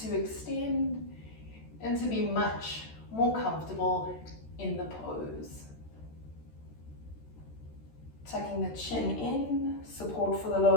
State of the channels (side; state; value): right; late; 13 ms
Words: to extend, and to be much more comfortable in the pose. Tucking the chin in, support for the